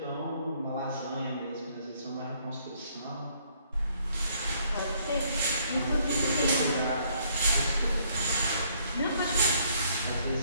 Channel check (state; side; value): inverted; both; correlation -0.66